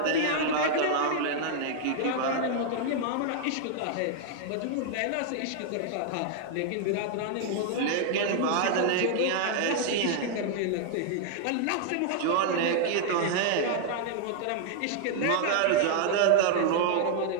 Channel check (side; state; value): both; different; correlation 0.00